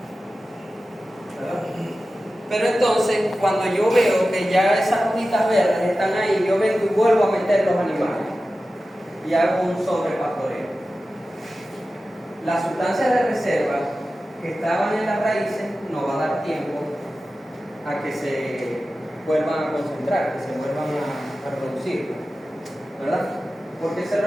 ¿verdad? Pero entonces, cuando yo veo que ya esas hojitas verdes están ahí, yo vengo y vuelvo a meter los animales y hago un sobrepastoreo. Las sustancias de reserva que estaban en las raíces no va a dar tiempo a que se vuelvan a concentrar, que se vuelvan a reproducir, ¿verdad? Porque se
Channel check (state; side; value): normal; both; correlation 0.94